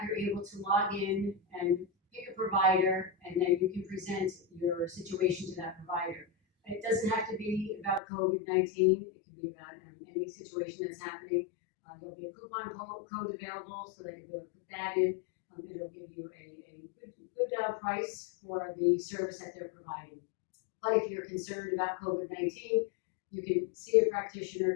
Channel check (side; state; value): right; drops out; at 8.0 s